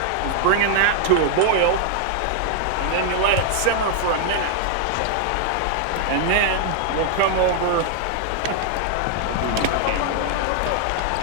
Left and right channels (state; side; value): different; both; correlation 0.00